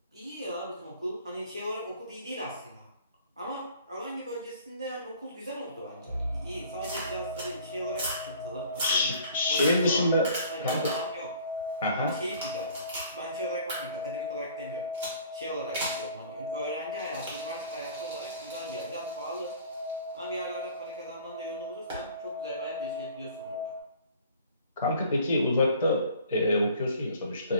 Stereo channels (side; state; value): both; inverted; correlation -0.50